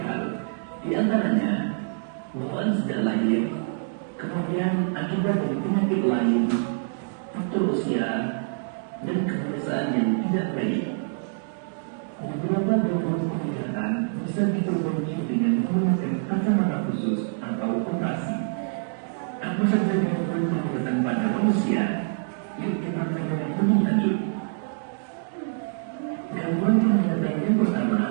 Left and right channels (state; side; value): silent; left; digital silence